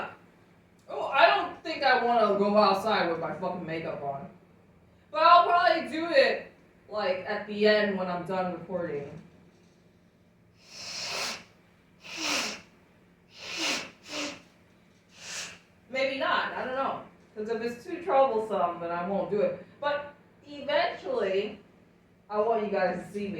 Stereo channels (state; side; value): identical; both; correlation 1.00